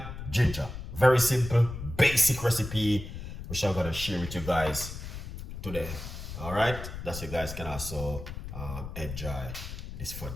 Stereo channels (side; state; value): left; noise; rumble, 9 dB below the sound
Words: ginger. Very simple, basic recipe, which I'm going to share with you guys today. All right? That you guys can also enjoy this